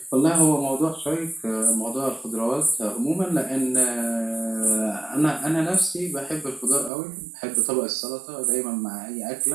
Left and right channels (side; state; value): left; drops out; at 6.9 s